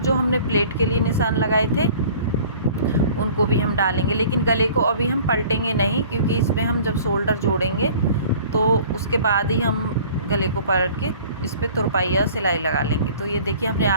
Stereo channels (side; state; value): both; inverted; correlation -0.49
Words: हमने प्लेट के लिए निशान लगाए थे उनको भी हम डालेंगे, लेकिन गले को अभी हम पलटेंगे नहीं, क्योंकि इसमें हम जब शोल्डर जोड़ेंगे तो उसके बाद ही हम गले को पलट के इस पर तुरपाई या सिलाई लगा लेंगे। तो ये देखिए हमने